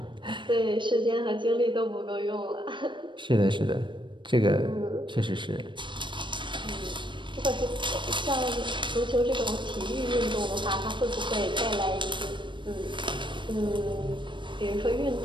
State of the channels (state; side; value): late; left; 0.23 ms